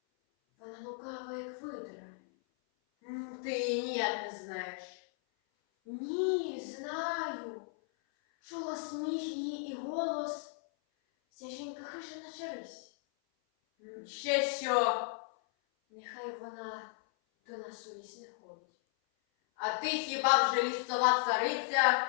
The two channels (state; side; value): silent; right; 54 dB below the other